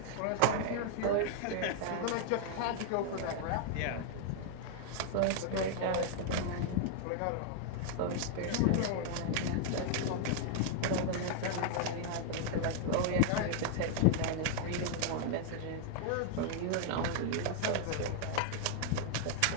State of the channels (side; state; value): both; different; correlation -0.01